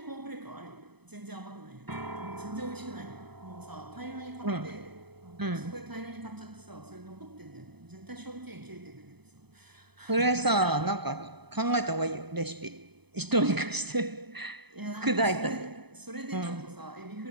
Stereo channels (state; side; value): late; left; 0.98 ms